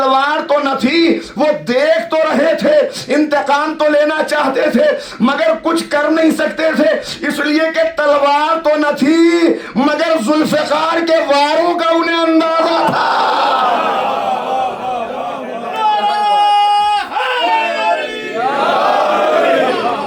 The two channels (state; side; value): identical; both; correlation 1.00